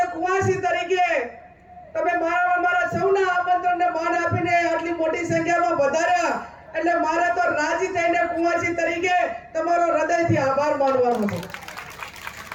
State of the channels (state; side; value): identical; both; correlation 1.00